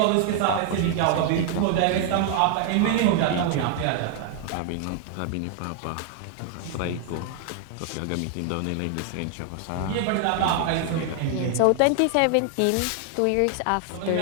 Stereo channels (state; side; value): different; both; correlation 0.00